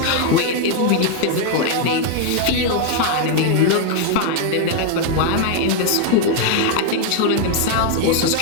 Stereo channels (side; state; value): both; different; correlation 0.00